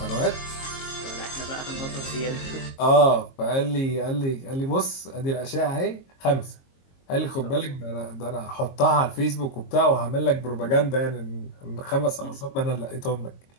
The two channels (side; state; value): right; late; 22 ms